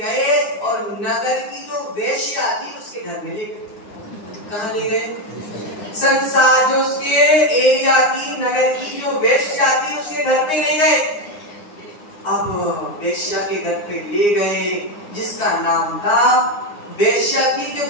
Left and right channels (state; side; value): late; right; 9.8 ms